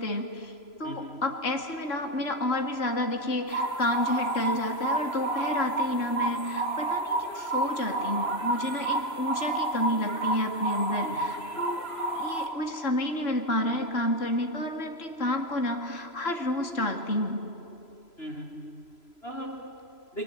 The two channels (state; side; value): late; right; 3.0 ms